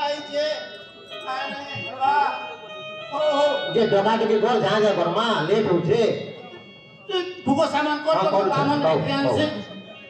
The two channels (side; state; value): both; identical; correlation 1.00